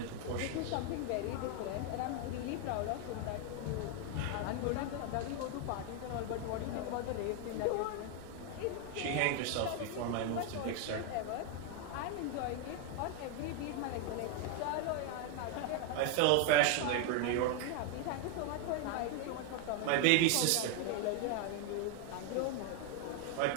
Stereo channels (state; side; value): different; both; correlation 0.01